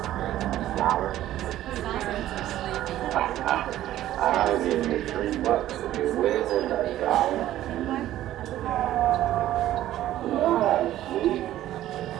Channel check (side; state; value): left; quieter; 13.5 dB